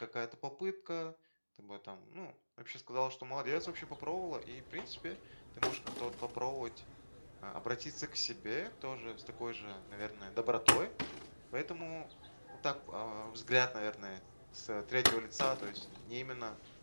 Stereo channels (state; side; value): inverted; both; correlation -1.00